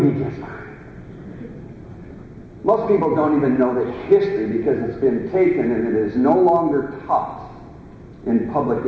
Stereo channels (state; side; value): identical; both; correlation 1.00